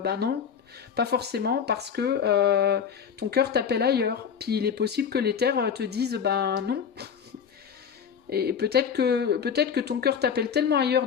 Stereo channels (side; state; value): right; quieter; 7.3 dB